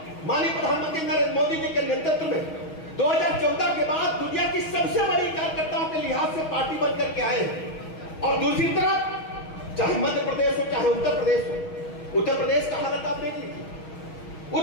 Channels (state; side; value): late; right; 6.3 ms